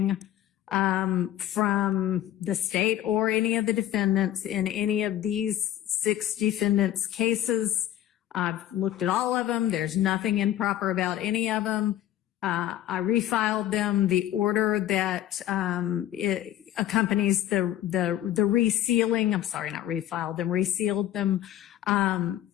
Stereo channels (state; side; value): quieter; right; 12.3 dB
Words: from the state or any of the defendants in any of these 6 defendants' cases. I've looked at all of them. There's nothing improper about any of them. I refiled them. The order that it accompanies the resealing, I'm sorry, not refiled them, resealed them,